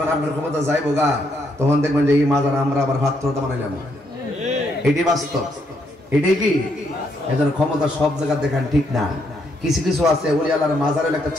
আপনার ক্ষমতা যাইবো গা, তখন দেখবেন যে এই মাজার আমরা আবার ভাত্রতা বানাইলাম। এটি বাস্তব, এটাই কি? এজন্য ক্ষমতা সব জায়গা দেখান ঠিক না। কিছু কিছু আছে ওলি আল্লাহর মাজারের একটা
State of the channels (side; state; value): both; normal; correlation 0.75